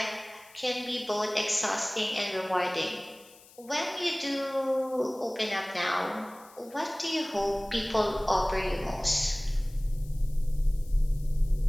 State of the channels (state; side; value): noise; left; hiss, 24 dB below the sound